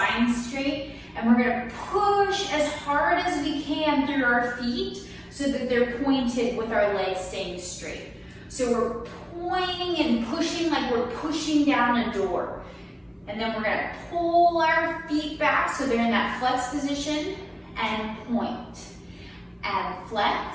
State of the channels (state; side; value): identical; both; correlation 1.00